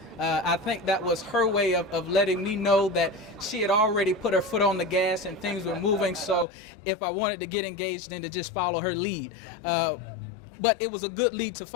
I think that was her way of letting me know that she had already put her foot on the gas and things were moving, so if I wanted to get engaged, then to just follow her lead. But it was a good lead to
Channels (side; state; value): right; drops out; at 6.5 s